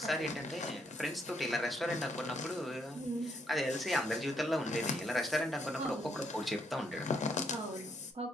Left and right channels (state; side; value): normal; both; correlation 0.73